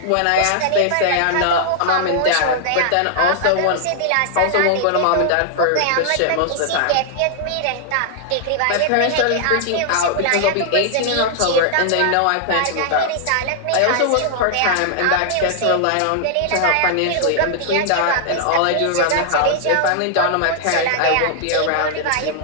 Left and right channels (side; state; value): both; different; correlation -0.01